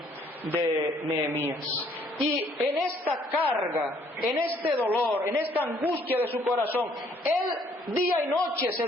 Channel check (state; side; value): normal; both; correlation 0.63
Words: de Nehemías. Y en esta carga, en este dolor, en esta angustia de su corazón, él día y noche se